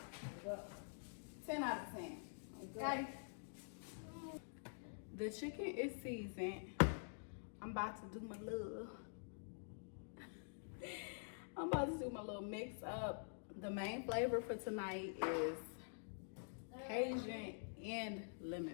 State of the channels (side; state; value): right; silent; digital silence